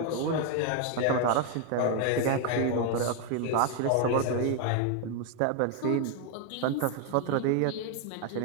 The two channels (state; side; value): different; both; correlation 0.01